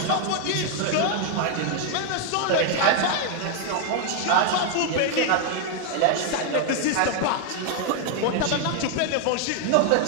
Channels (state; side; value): different; both; correlation 0.01